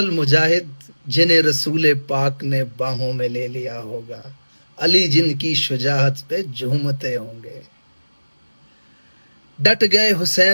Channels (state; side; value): inverted; both; correlation -1.00